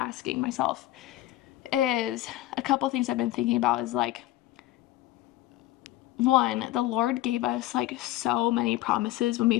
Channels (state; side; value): quieter; right; 15.9 dB